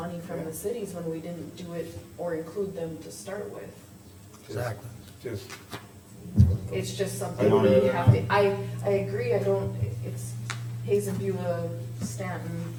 from the cities when we didn't do it or include them to start with. Exactly. Just, It's just something I don't we either. have to, I agree, I don't, it's Hazen, Beulah, Stanton,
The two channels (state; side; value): identical; both; correlation 1.00